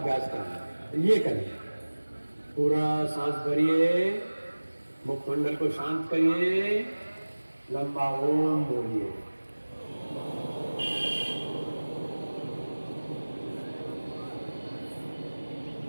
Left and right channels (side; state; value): both; inverted; correlation -1.00